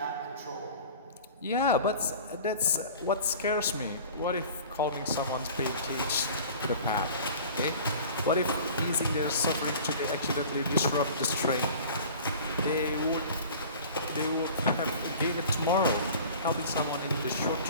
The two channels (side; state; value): both; inverted; correlation -0.42